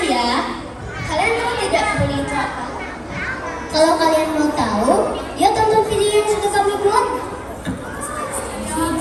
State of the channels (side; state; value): both; identical; correlation 1.00